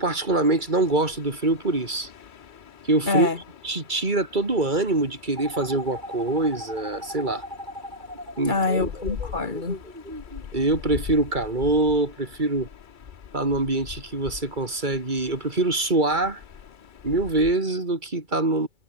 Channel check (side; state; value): left; late; 2.3 ms